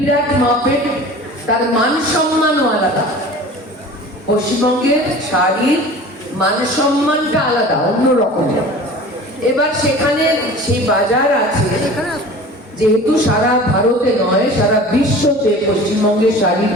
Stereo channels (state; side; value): normal; both; correlation 0.40